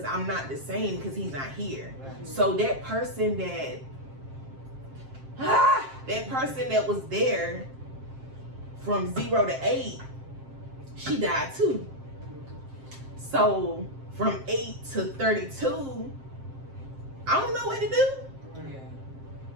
I'm not the same because he's not here. Right. So that person that was there from 0 to 8, she died too. So from 8 to 32, I don't know what to do. Yeah.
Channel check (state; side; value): late; left; 7.5 ms